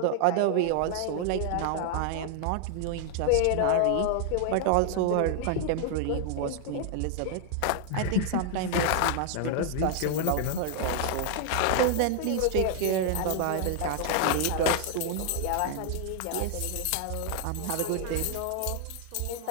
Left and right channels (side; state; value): both; different; correlation 0.00